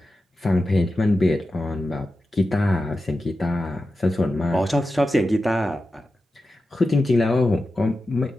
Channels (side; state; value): both; normal; correlation 0.91